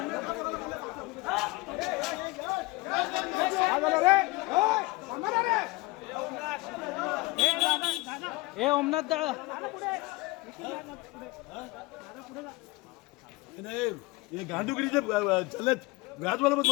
ए ओमनाथ दादा हे गांडुगिरीचे चालत व्याज मला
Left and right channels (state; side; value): quieter; right; 22.2 dB